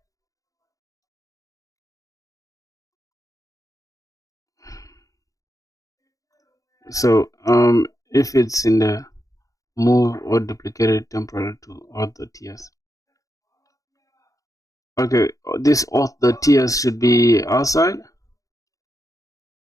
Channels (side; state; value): right; late; 0.16 ms